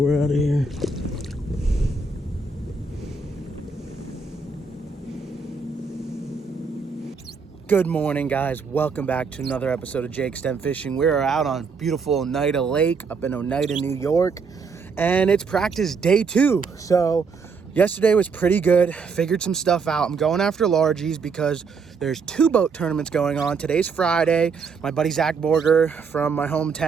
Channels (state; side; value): quieter; left; 5.0 dB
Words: out of here. Good morning, guys. Welcome back to another episode of Jake Stem Fishing. We are out on beautiful Oneida Lake up in Oneida, New York, and it's practice day 2. So yesterday was pretty good. Figured some stuff out. I'm going after largies because there's 2 boat tournaments going on. Today's Friday. My buddy Zach Borger from my